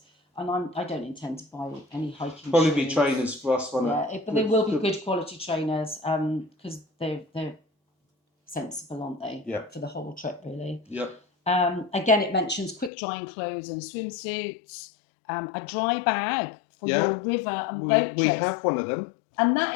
and I don't intend to buy any hiking shoes. Probably be trainers for us, won't it? But they will be good quality trainers because they're sensible, aren't they? Yeah. For the whole trip, really. Yep. Again, it mentions quick drying clothes and swimsuits, a dry bag for your river and boat trips. We have one of them. And that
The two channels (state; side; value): drops out; right; at 12.9 s